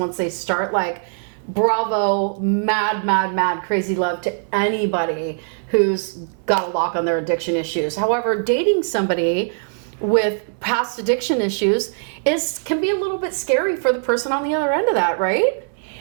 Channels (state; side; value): silent; left; digital silence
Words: they start. Like, bravo, mad, crazy love to anybody who's got a lock on their addiction issues. However, dating somebody with past addiction issues can be a little bit scary for the person on the other end of that, right?